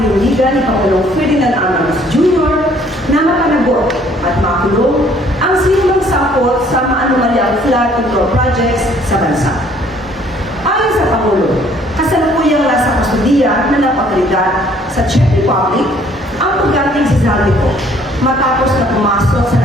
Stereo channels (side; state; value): both; normal; correlation 0.60